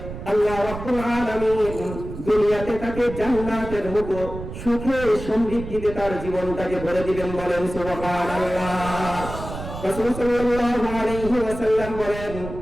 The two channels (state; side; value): noise; right; rumble, 10 dB below the sound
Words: আল্লাহ রাব্বুল আলামিন দুনিয়াতে তাকে জান্নাতের মতো সুখে সমৃদ্ধিতে তার জীবনটাকে ভরে দিবেন। বলেন সুবহানাল্লাহ। রাসূল সাল্লাল্লাহু আলাইহি ওয়াসাল্লাম বলেন,